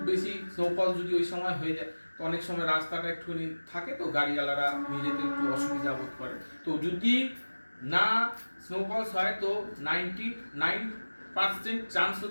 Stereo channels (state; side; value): inverted; both; correlation -1.00